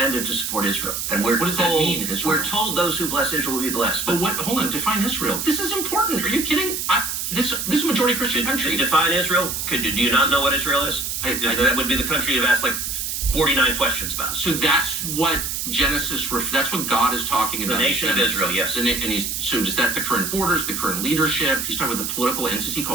to support Israel, and we're What does that told, mean, Israel? We're told those who bless Israel will be blessed. But what? Hold on. Define Israel. This is important. Are you kidding? This is a majority Christian country. Define Israel. Do you not know what Israel is? That would be the country you've asked like 49 questions about. So that's what Genesis. That's what God is talking about. The nation of Israel, yes. And so is that the current borders, the current leadership? He's talking about the political entity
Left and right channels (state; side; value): noise; right; hiss, 3 dB below the sound